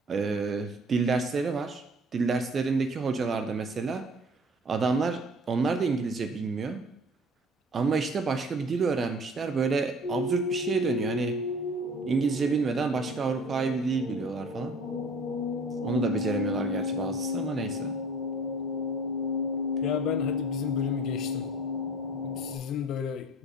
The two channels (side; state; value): both; normal; correlation 0.46